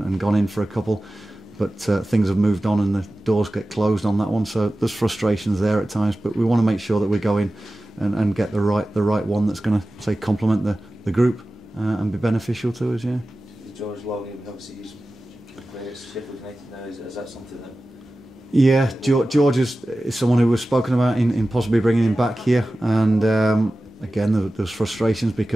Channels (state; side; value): normal; both; correlation 0.95